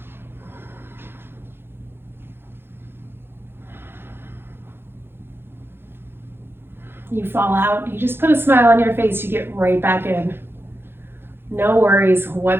You fall out, you just put a smile on your face, you get right back in. No worries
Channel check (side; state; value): left; late; 0.11 ms